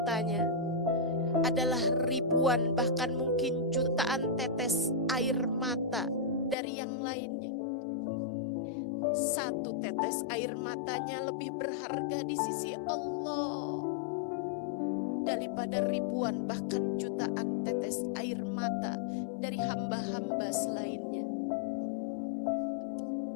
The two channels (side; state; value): right; drops out; at 6.6 s